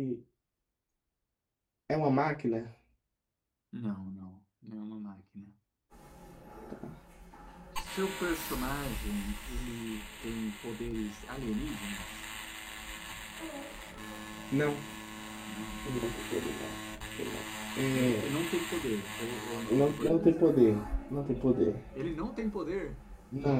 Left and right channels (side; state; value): both; identical; correlation 1.00